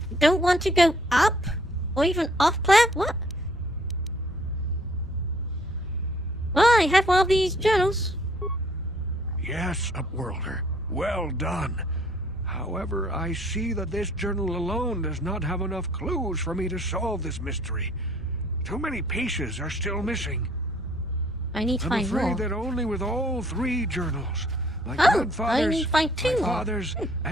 don't want to go up? Or even off planet? What? Well, I have one of these journals. Yes, Upworlder. Well done. However, I see that this journal alone does not have enough clues for me to solve this mystery. Too many pieces are still missing. I need to find more. I'm afraid that only with all three journals, my grandfather's, I need to find two my more. father's,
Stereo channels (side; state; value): both; normal; correlation 0.61